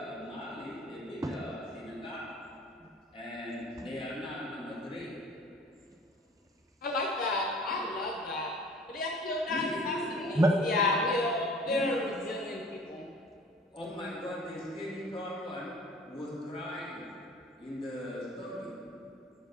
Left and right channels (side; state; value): both; normal; correlation 0.48